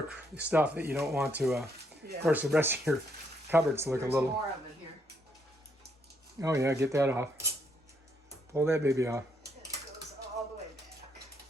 stuff that you don't want to. Of course, the rest of your cupboards look There's a little. more of it here. Oh yeah, get that off. Pull that baby off. It goes all the way back.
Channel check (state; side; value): normal; both; correlation 0.74